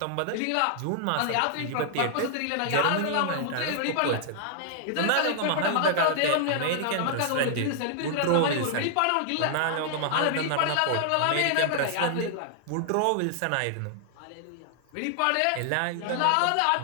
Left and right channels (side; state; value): both; different; correlation -0.01